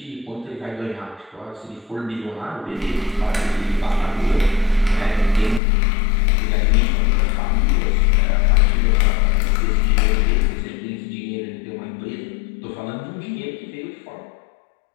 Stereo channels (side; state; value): right; drops out; at 5.6 s